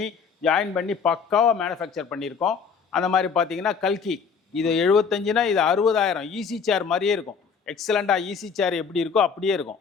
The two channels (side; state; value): right; quieter; 6.0 dB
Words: ஜாயின் பண்ணி பக்காவாக மேனுஃபேக்சர் பண்ணியிருக்கோம். அந்த மாதிரி பார்த்தீங்கன்னா கல்கி, இது 75னா இது 60,000. ஈஸி சேர் மாதிரியே இருக்கும். எக்ஸலண்டாக ஈஸி சேர் எப்படி இருக்கோ அப்படியே இருக்கும்.